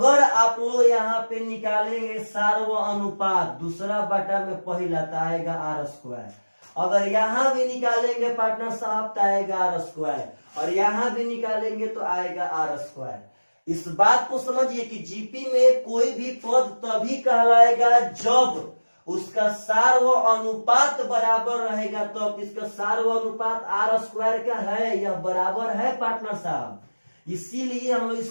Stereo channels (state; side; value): inverted; both; correlation -1.00